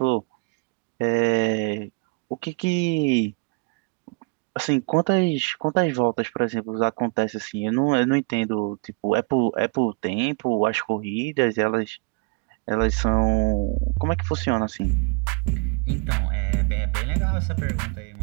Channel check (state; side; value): quieter; left; 30.6 dB